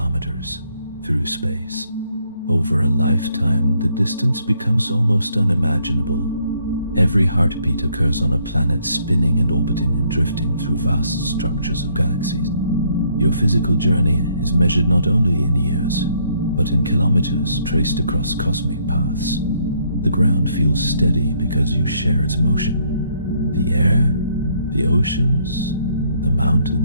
through space. Over a lifetime, the distance becomes almost unimaginable. Every heartbeat occurs on a planet spinning and orbiting and drifting through vast structures of galaxies. Your physical journey is measured not only in years, but in kilometers traced across cosmic paths. The ground feels steady because you share its motion. The air, the oceans, the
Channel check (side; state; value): both; inverted; correlation -0.69